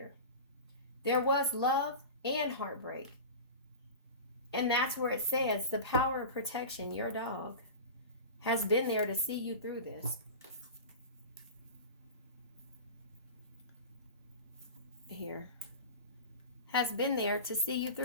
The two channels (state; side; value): inverted; both; correlation -0.30